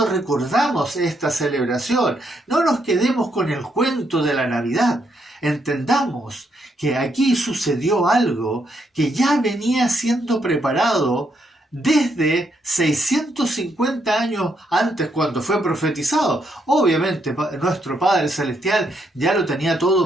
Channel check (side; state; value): both; normal; correlation 0.76